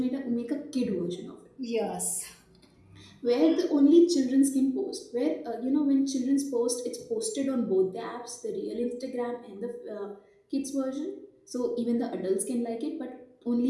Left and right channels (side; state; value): both; identical; correlation 1.00